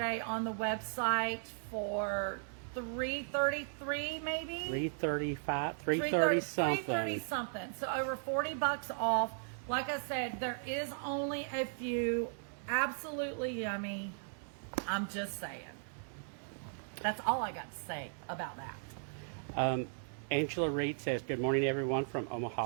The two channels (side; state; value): left; silent; digital silence